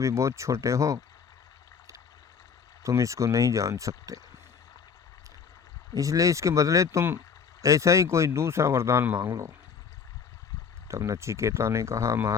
बहुत छोटे हो, तुम इसको नहीं जान सकते। इसलिए इसके बदले तुम ऐसा ही कोई दूसरा वरदान मांग लो। तब नचिकेता ने कहा,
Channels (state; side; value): quieter; right; 6.3 dB